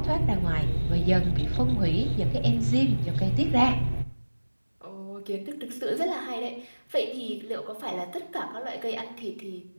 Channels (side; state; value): both; inverted; correlation -1.00